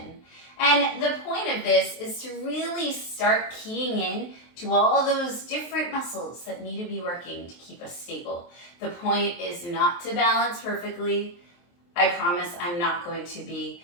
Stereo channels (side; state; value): right; late; 23 ms